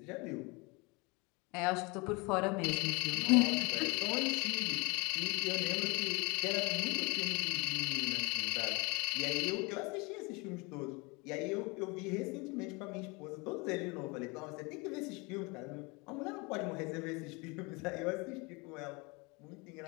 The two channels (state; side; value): quieter; right; 27.7 dB